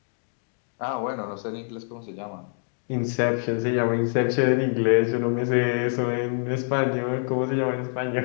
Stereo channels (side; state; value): right; silent; 61 dB below the other